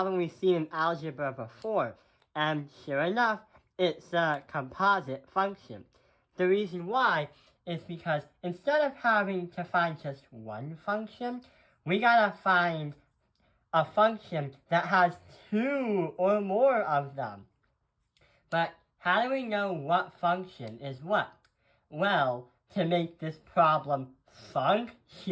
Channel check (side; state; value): both; identical; correlation 1.00